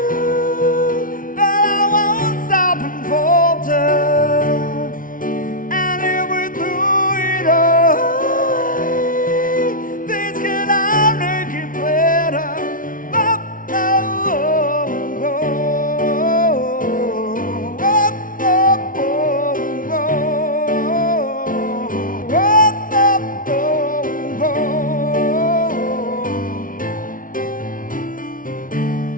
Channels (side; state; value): right; late; 0.39 ms